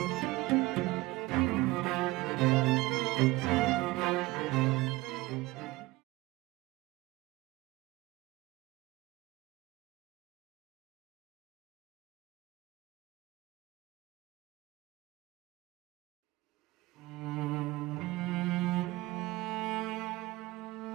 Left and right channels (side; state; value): left; quieter; 20.3 dB